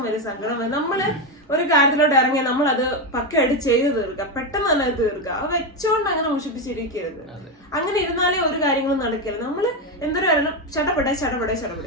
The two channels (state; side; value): normal; both; correlation 0.10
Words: വരും, സങ്കടം വരും. നമ്മള് ഒരു കാര്യത്തിലോട്ട് ഇറങ്ങിയാൽ നമ്മൾ അത് പക്കയായിട്ട് ചെയ്ത് തീർക്കുക, പെട്ടെന്ന് തന്നെ തീർക്കുക. അത് വെച്ചോണ്ട് അങ്ങനെ മുഷിപ്പിച്ചിരിക്കരുത്. അങ്ങനെ ഇരുന്നാലേ ഒരു കാര്യങ്ങളും നടക്കരുത്. നമ്മള് എന്തൊരു കാരണം ഷടപടി